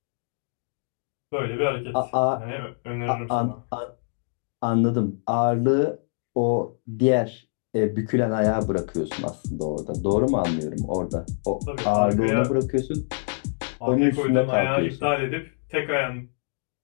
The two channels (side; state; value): right; silent; digital silence